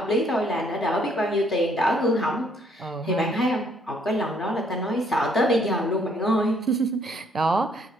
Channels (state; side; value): normal; both; correlation 0.66